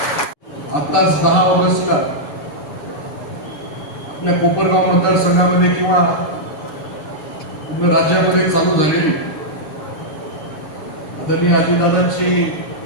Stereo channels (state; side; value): late; right; 6.7 ms